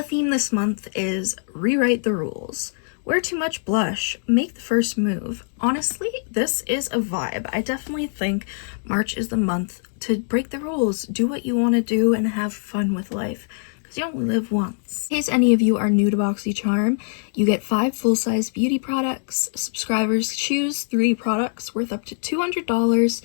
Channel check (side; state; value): right; silent; digital silence